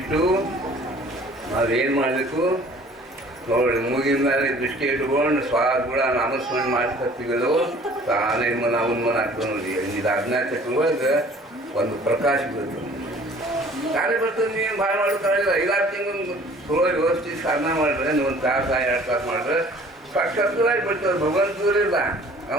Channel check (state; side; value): normal; both; correlation 0.51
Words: ನಾವೇನು ಮಾಡಬೇಕು ನೋಡಿ ಮೂಗಿನ ಮೇಲೆ ದೃಷ್ಟಿ ಇಟ್ಕೊಂಡು ಕೂಡ ನಾಮಸ್ಮರಣೆ ಮಾಡ್ಕೊತೀವಲ್ಲೋ ತಾನೇ ಮನ ಉನ್ಮನ ಆಗ್ತದೆ ನೋಡಿ ಇದು ಅಜ್ಞಾನ ಚಕ್ರೊಳಗೆ ಒಂದು ಪ್ರಕಾಶ ಬರ್ತದೆ ತಾನೇ ಬರ್ತದೆ ನೀವು ಭಾಳ ಮಾಡೋಕ್ಕಾಗಿಲ್ಲ 5-6 ತಿಂಗಳು ಚಲೋ ವ್ಯವಸ್ಥೆ ಸಾಧನ ಮಾಡಿದ್ರೆ ನೀವು ಒಂದು ತಾಸು 2 ತಾಸು ಮಾಡಿದ್ರೆ ಸಾಕ್ಷಾತ್ಕಾರಾಗಿ ಬಿಡ್ತದೆ ಭಗವಂತರಿಲ್ಲ